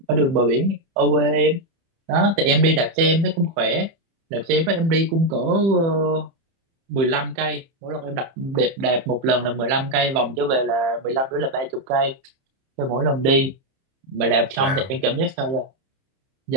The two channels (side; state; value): left; late; 30 ms